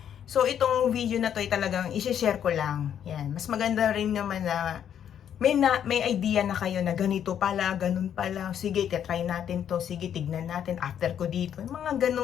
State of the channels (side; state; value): right; quieter; 9.3 dB